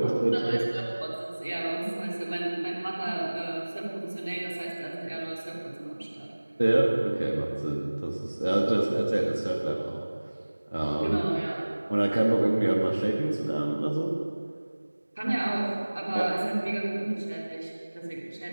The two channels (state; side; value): inverted; both; correlation -1.00